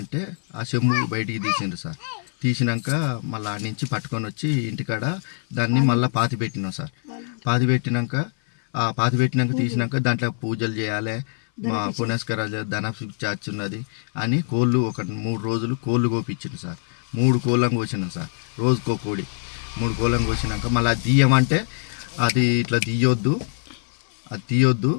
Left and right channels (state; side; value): silent; right; 58 dB below the other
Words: అంటే ఆ చెంబు బయటికి తీసిండు సార్ తీసినాక మళ్ళీ ఆడి నుంచి పట్టుకొని వచ్చి ఇంటికాడ దాన్ని మళ్ళీ పాతి పెట్టినాం సార్ పాతి పెట్టినాక తీసినాక దాంట్లో పూజలు చేయాలి మా పునస్కారాలు ధన చార్జ్ ఉన్నది అని కోళ్ళు ఒక 3 రోజులు కోళ్ళు కోపించిండు సార్ 3 కోళ్ళం కోసినాం సార్ రోజుకో కోడి 3 కోళ్ళం కోసినాక మళ్ళీ దియ్యమంటే అది ఇట్లా తీయొద్దు, అది తీయొద్దు,